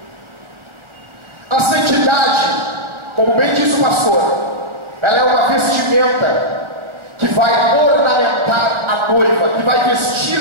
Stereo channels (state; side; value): late; left; 1.4 ms